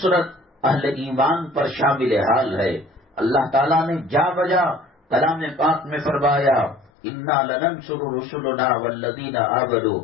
اہل ایمان پر شامل حال ہے۔ اللہ تعالیٰ نے جا بجا کلام پاک میں فرمایا اِنَّا لَنَنصُرُ رُسُلَنَا وَالَّذِينَ آمَنُوا،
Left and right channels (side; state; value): right; drops out; at 6.9 s